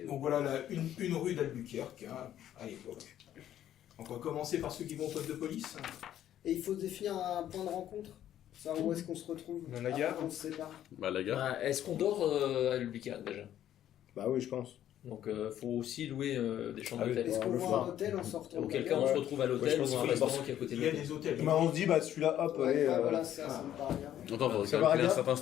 Donc voilà une rue d'Albuquerque, hein, à l'époque. Donc on va commencer par ceux qui vont au poste de police. Et il faut définir un point de rencontre. Ça, où est-ce qu'on se retrouve? Dans la gare. Après, on se sépare. Bah la gare. Ah, est-ce qu'on dort à Albuquerque déjà? Bah oui, je pense. Donc faut aussi louer des chambres Ah oui, d'hôtel. Est-ce qu'on le voit soir. un hôtel en sortant? Auquel de cas la on gare? se retrouve à Ouais, je l'hôtel pense ou qu'il à un faut restaurant d'abord- qui est à côté Il de y a l'hôtel. des hôtels. Bah, on se dit, bah celui-là, hop, Ouais, allez. bah, voilà, ça me paraît bien. Attends, faut Ça va, calculer un regarde. certain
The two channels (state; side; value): quieter; right; 11.4 dB